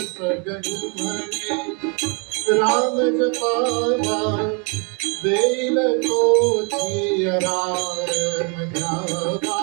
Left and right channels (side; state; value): left; quieter; 35.4 dB